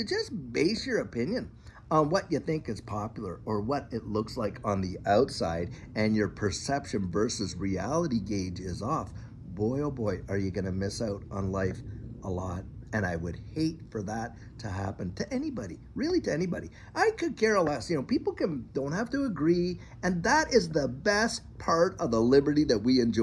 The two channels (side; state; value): both; identical; correlation 1.00